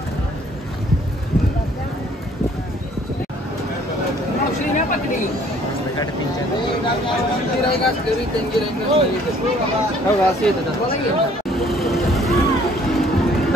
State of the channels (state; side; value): normal; both; correlation 0.59